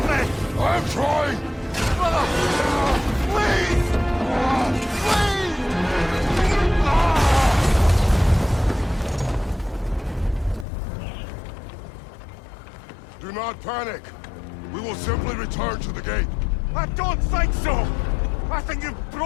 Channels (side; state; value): right; drops out; at 10.7 s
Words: me! I'm trying! Brother! Please! Please! Do not panic. We will simply return to the gate. I don't think so! I think you've